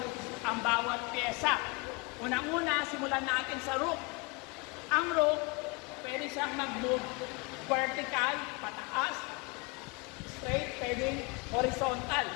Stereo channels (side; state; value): right; quieter; 28.3 dB